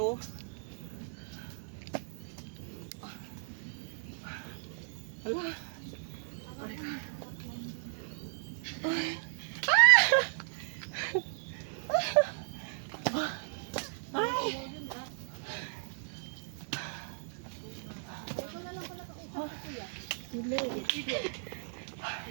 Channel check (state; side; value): silent; left; 54 dB below the other